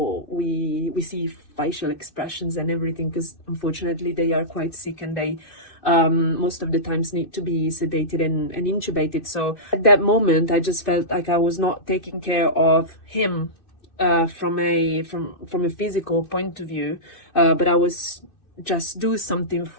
we see facial expressions and everything, because unfortunately they are quite sick, and they most of the times need to be sedated and intubated. So at that moment, I just felt like I was not taking care of him from a physical point of view, but I was just do something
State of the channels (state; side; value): late; right; 2.6 ms